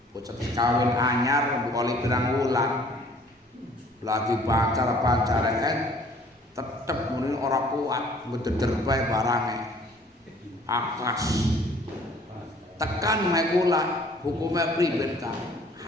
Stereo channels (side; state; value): both; normal; correlation 0.55